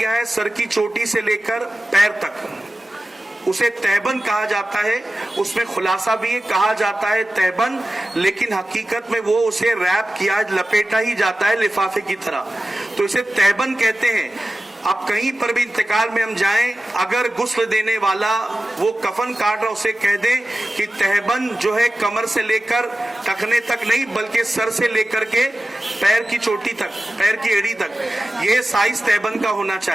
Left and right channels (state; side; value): normal; both; correlation 0.95